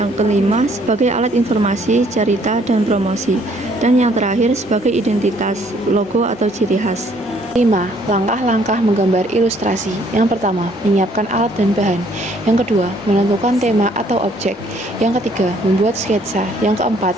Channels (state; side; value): normal; both; correlation 0.63